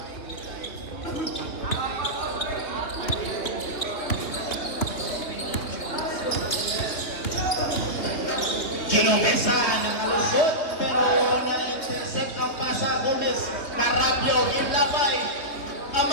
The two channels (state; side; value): late; right; 3.1 ms